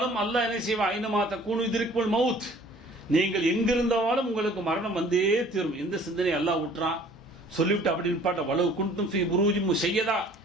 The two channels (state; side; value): normal; both; correlation 0.52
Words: அல்லாஹ் என்ன செய்வான்? ஐனமா தக்கூனு யுத்ரிக்குல் மவுத். நீங்கள் எங்கிருந்தாலும் உங்களுக்கு மரணம் வந்தே தீரும். எந்த சிந்தனை அல்லாஹ் விட்டுறான் சொல்லிவிட்டு அப்படி நிப்பாட்ட வலவு குன்தும் ஃபீ புரூஜின் முஷய்யதா,